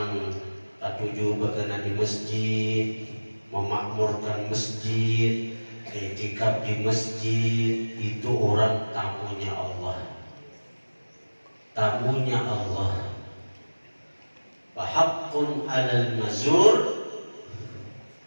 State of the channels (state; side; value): inverted; both; correlation -1.00